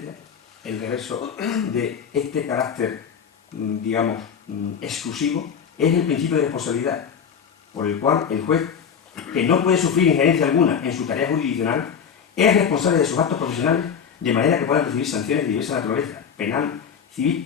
el reverso de este carácter, digamos, exclusivo, es el principio de responsabilidad, por el cual el juez, que no puede sufrir injerencia alguna en su tarea jurisdiccional, es responsable de sus actos profesionales de manera que puedan recibir sanciones de diversa naturaleza, penal, civil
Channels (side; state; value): right; quieter; 7.2 dB